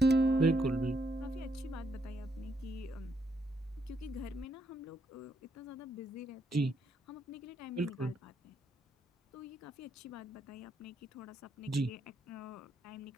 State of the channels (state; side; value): normal; both; correlation 0.76